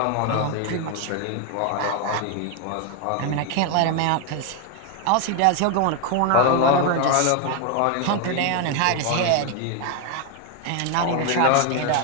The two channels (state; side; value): different; both; correlation 0.01